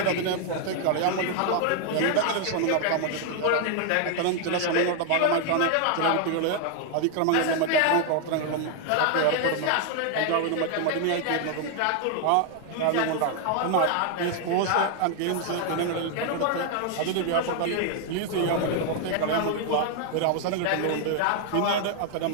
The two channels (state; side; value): different; both; correlation 0.00